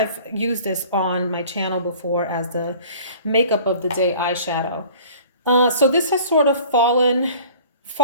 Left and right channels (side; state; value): both; inverted; correlation -0.47